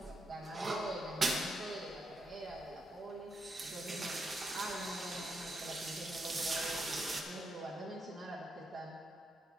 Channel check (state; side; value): normal; both; correlation 0.82